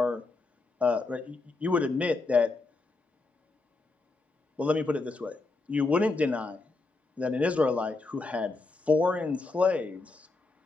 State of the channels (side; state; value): right; quieter; 3.4 dB